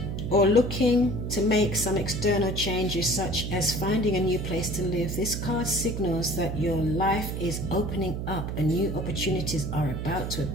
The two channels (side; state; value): right; noise; hum, 4 dB below the sound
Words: Or looking to make some external changes, such as finding a new place to live. This card signals that your life is opening up and new opportunities are about to